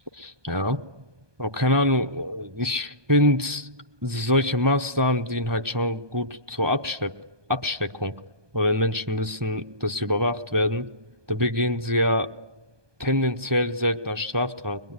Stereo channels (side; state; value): left; late; 1.2 ms